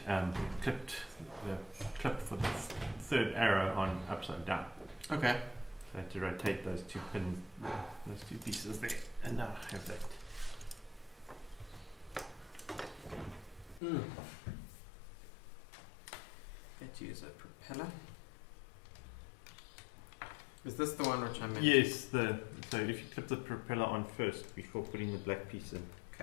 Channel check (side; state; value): right; drops out; at 13.8 s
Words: clipped the clip for the third arrow on upside down. Okay. So I had to rotate those two pins, those two pieces there, and now I have that. Let's use a propeller. Is this the one which I meant? Yes, so if you clip the propeller on first before putting the black piece in.